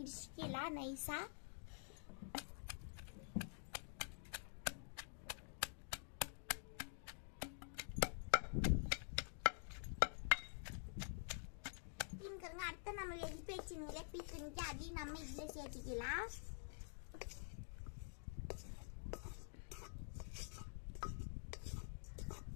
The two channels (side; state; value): right; silent; digital silence